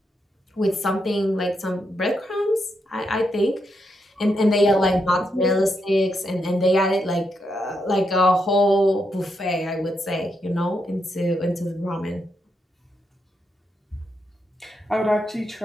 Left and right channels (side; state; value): both; normal; correlation 0.82